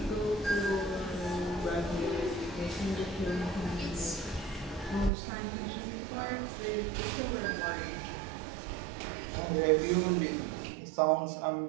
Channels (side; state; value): left; drops out; at 5.1 s